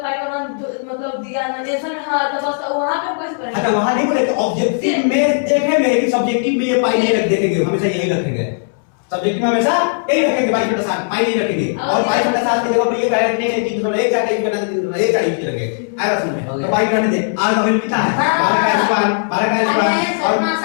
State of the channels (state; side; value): silent; right; 68 dB below the other